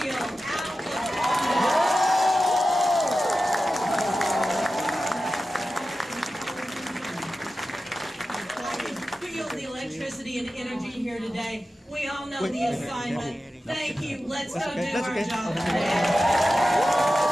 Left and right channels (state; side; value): normal; both; correlation 0.93